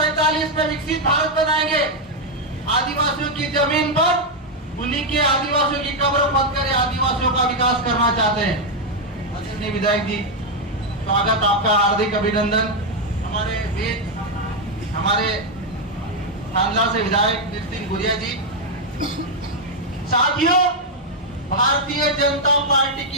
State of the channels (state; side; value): normal; both; correlation 0.01